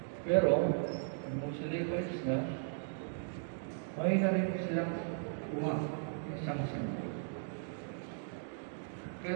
Pero, nung sila ipalis na, may na rin silang isang sanggol. Kaya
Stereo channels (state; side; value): silent; left; digital silence